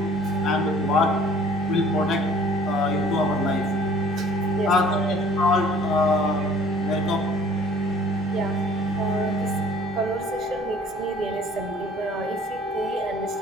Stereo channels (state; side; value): normal; both; correlation 0.53